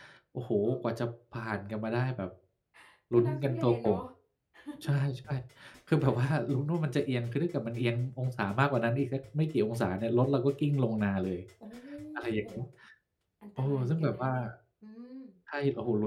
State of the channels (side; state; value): both; identical; correlation 1.00